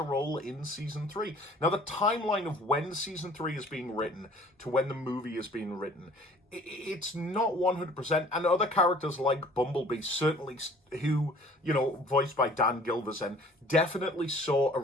role in season 3. Now, the timeline of when season 3 is being written to when the movie is being written, it's not 100%. And other characters like Bumblebee, certainly, who, you know, voiced by Dan Gilvezan, definitely saw a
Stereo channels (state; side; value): normal; both; correlation 0.52